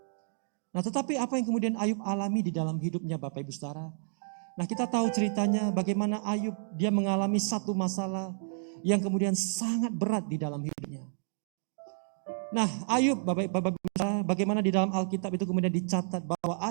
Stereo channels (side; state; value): left; silent; digital silence